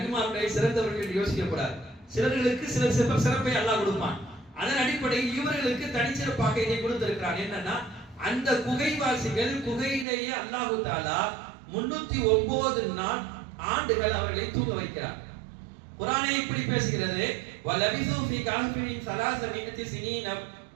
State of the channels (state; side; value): drops out; left; at 10.1 s